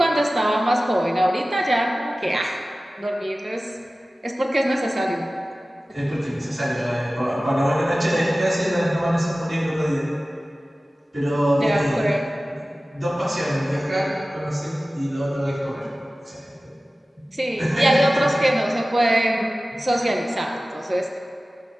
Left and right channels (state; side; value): normal; both; correlation 0.96